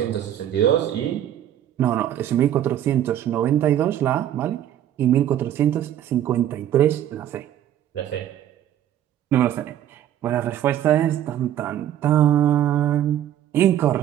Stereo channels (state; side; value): quieter; left; 11.2 dB